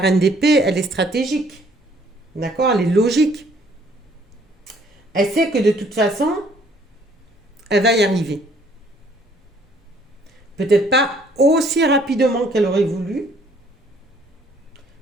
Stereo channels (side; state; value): both; normal; correlation 0.62